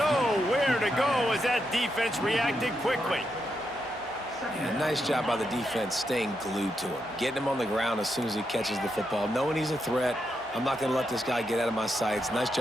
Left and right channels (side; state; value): both; normal; correlation 0.83